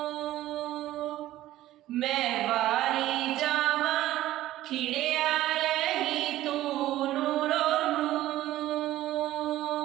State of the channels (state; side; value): quieter; left; 14.7 dB